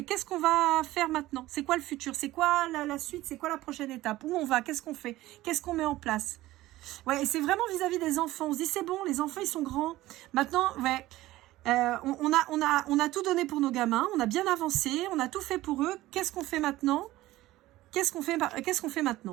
qu'est-ce qu'on va faire maintenant? C'est quoi le futur? C'est quoi la suite? C'est quoi la prochaine étape? Où on va? Qu'est-ce qu'on fait? Qu'est-ce qu'on met en place? Ouais, et c'est vraiment vis-à-vis des enfants. On se dit, c'est bon, les enfants, ils sont grands. Maintenant, ouais, on a tout donné pour nos gamins. On a bien avancé. On a tout fait pour eux. Qu'est-ce qu'on fait maintenant? Qu'est-ce qu'on fait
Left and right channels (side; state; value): left; quieter; 16.8 dB